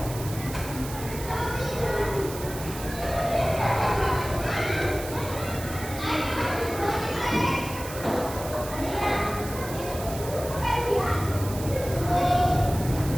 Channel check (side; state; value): right; noise; hiss, 12 dB below the sound